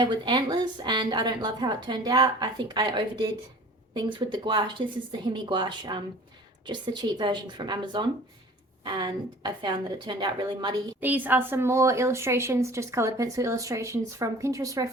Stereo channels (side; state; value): both; normal; correlation 0.45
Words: with antlers, and I don't love how it turned out. I think I overdid things with the gouache. This is the Himi gouache, just the cheap version from Amazon, and I found that it turned out really muddy. These are some more illustrations, just coloured pencil illustrations from Pinterest